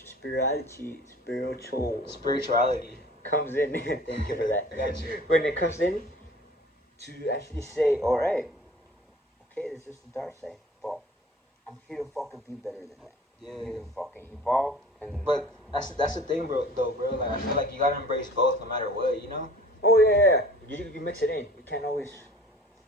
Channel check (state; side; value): normal; both; correlation 0.46